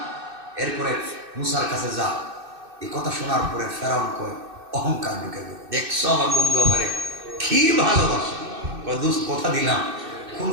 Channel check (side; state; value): left; late; 2.6 ms